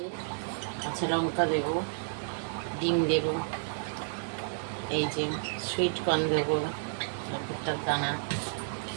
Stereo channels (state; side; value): silent; left; 57 dB below the other